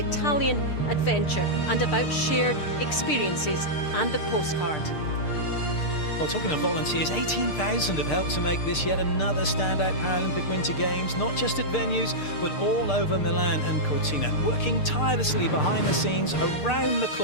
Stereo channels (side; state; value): right; late; 6.6 ms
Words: adventure and about shared experiences and the postcard. Well, talking of volunteers, 18,000 have helped to make this yet another standout Paralympic Winter Games, not just at venues, but all over Milan and Cortina, working tirelessly behind the scenes, around the